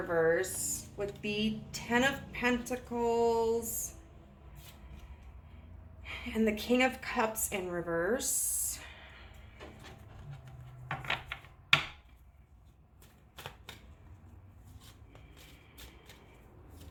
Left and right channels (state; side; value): identical; both; correlation 1.00